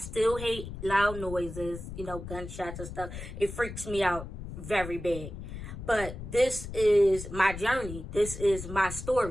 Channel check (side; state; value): left; noise; rumble, 9 dB below the sound